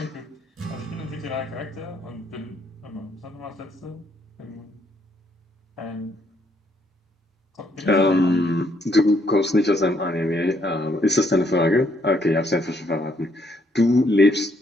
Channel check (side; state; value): both; normal; correlation 0.71